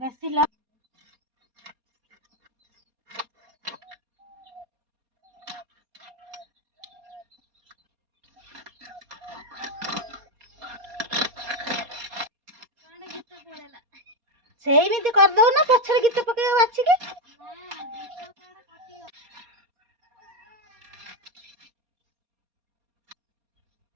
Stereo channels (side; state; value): left; late; 4.2 ms